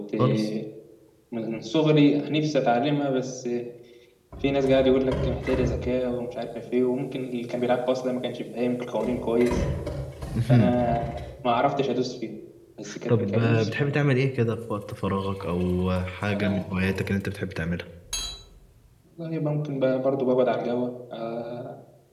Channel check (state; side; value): identical; both; correlation 1.00